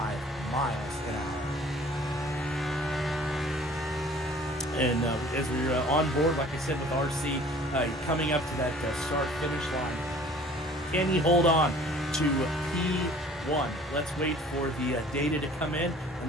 miles an hour. And as we're on board, like I said, with RC coming up to that start-finish line, can he hold on to P1? Let's wait for the data to come in, and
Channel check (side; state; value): both; normal; correlation 0.50